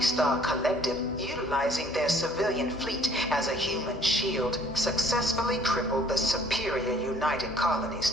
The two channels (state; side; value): normal; both; correlation 0.58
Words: Collective, utilizing their civilian fleet as a human shield, successfully crippled the superior United